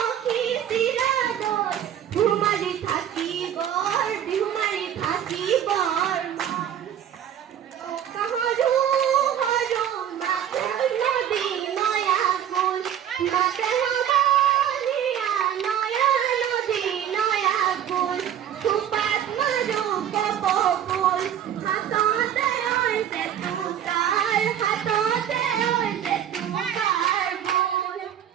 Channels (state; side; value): quieter; left; 9.8 dB